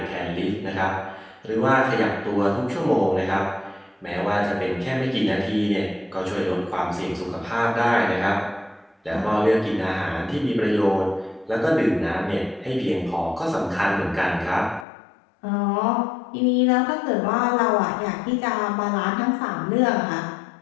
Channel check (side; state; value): right; drops out; at 14.9 s